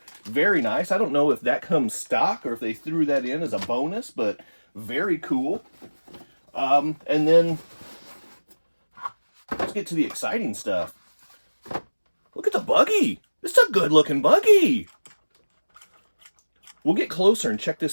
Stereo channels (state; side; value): inverted; both; correlation -1.00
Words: Very nice. I don't know if that comes stock or if they threw that in as a bonus, but very cool. And then let's get to the exciting stuff. Look at the buggy. This is a good looking buggy. We'll get closer and check